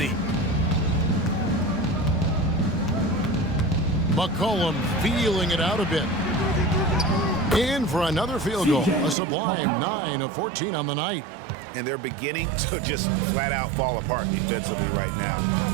McCollum feeling it out a bit. In for another field goal. A sublime 9 of 14 on the night. And they're beginning to just flat out fall apart defensively right now,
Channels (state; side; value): drops out; left; at 9.2 s